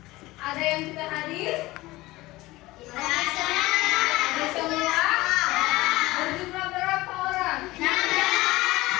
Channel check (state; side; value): quieter; right; 19.3 dB